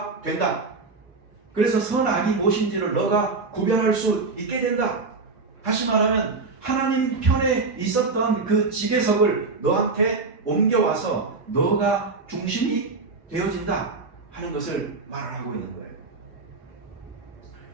된다. 그래서 선악이 무엇인지를 너가 구별할 수 있게 된다. 다시 말하면 하나님 편에 있었던 그 지배석을 너한테 옮겨와서 너가 중심이 되어진다 하는 것을 말을 하고 있는 거예요.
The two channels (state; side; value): quieter; left; 4.0 dB